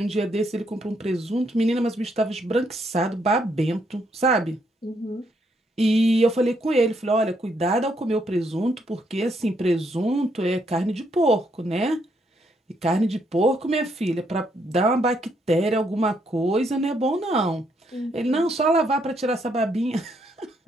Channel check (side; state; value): both; normal; correlation 0.74